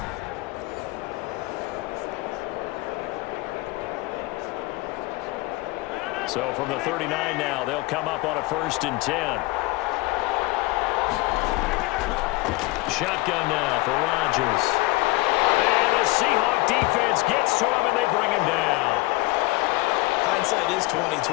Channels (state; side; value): quieter; right; 21.7 dB